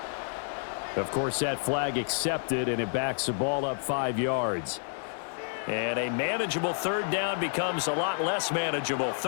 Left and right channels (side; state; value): right; silent; digital silence